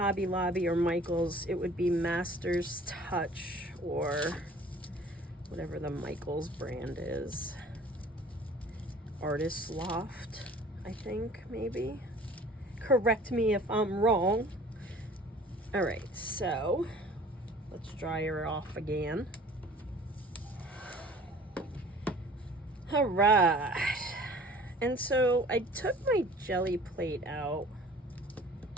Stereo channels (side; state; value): both; normal; correlation 0.49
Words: Lobby or Michaels, it would be Master's Touch or whatever the Michaels brand is. Artist Loft, I think, maybe. Correct me if I'm wrong. All right, so let's dry her off again. All right, and so I took my jelly plate out